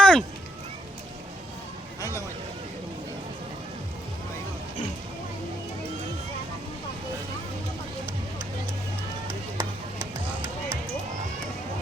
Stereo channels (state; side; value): normal; both; correlation 0.73